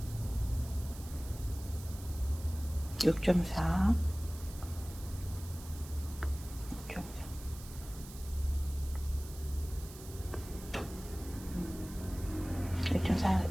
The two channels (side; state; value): right; noise; hiss, 16 dB below the sound